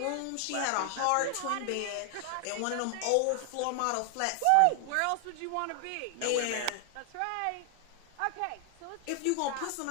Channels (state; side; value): different; both; correlation 0.00